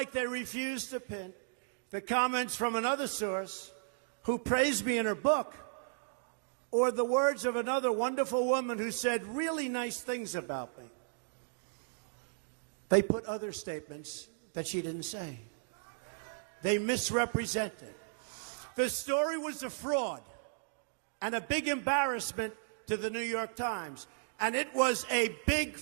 they refused to print the comments from another source who praised me in her book, or the words of another wonderful woman who said really nice things about me. They put other statements that she didn't say. They misrepresented. The story was a fraud and a big embarrassment to the New York Times. And it was a big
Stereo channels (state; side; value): silent; left; digital silence